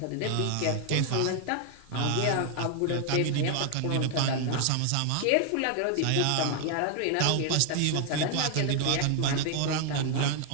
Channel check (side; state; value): both; different; correlation 0.00